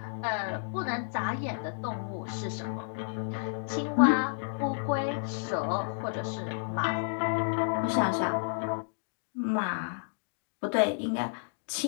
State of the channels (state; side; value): silent; right; digital silence